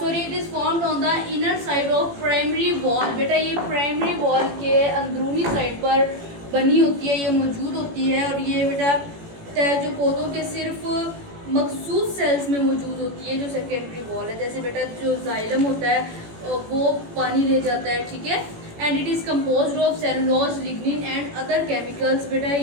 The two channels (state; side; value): late; left; 18 ms